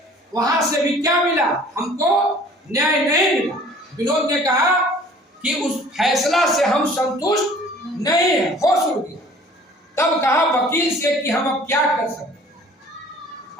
वहां से भी क्या मिला? हमको न्याय नहीं मिला। विनोद ने कहा कि उस फैसला से हम संतुष्ट नहीं है। होश उड़ गया। तब कहा वकील से कि हम अब क्या कर सकते,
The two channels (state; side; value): normal; both; correlation 0.50